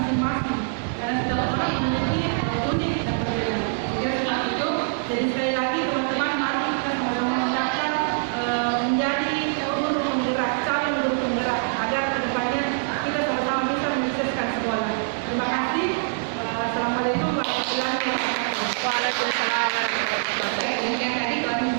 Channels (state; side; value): silent; left; digital silence